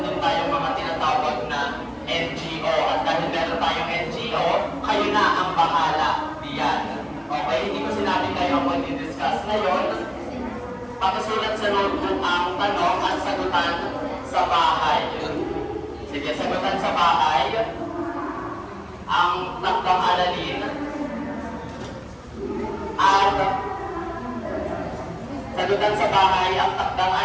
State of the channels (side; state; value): both; identical; correlation 1.00